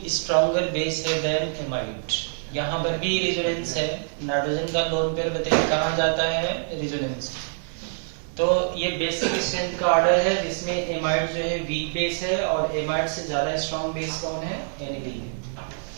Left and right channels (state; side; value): silent; left; 61 dB below the other